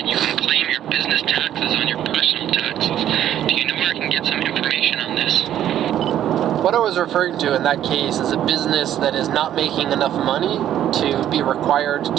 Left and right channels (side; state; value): left; quieter; 11.2 dB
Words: you can claim your business taxes on your personal taxes. Do you know where I can get some information on this? What I was referring to in that case is a business that is not making enough money to be required